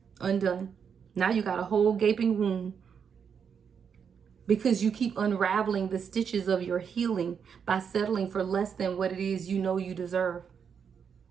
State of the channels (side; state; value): left; quieter; 7.0 dB